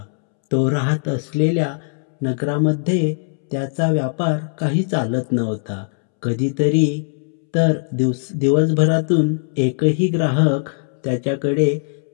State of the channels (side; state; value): right; silent; 66 dB below the other